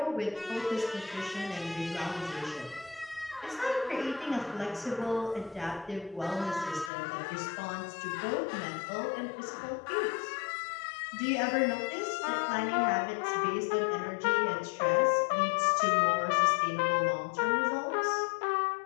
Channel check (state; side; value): drops out; right; at 6.9 s